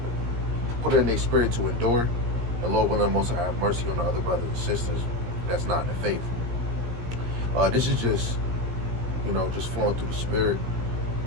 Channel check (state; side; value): late; left; 17 ms